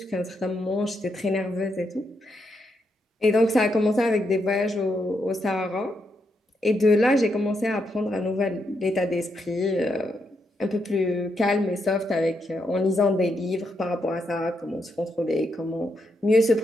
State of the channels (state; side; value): normal; both; correlation 0.81